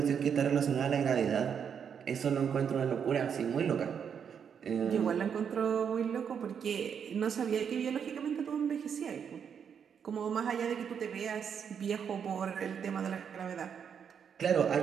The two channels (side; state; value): left; quieter; 7.4 dB